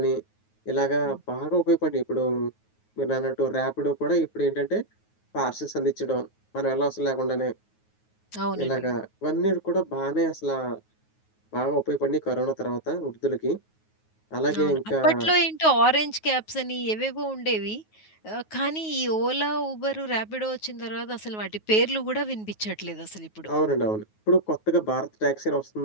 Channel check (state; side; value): late; right; 9.4 ms